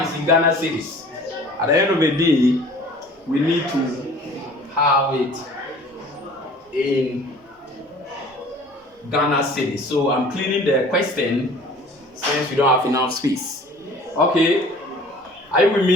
it's in Ghana cedis. At the end of the day, we need to have it in Ghana cedis. So I'm cleaning the question since we don't have enough space. Okay, are you with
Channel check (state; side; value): normal; both; correlation 0.48